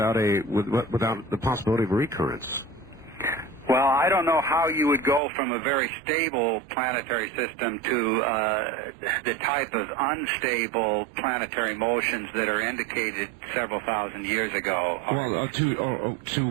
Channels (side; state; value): left; drops out; at 5.2 s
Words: possibility of recurrence. Well, I don't know how you would go from a very stable planetary system to the type of unstable planetary motions that are indicated several thousand years ago. Well, to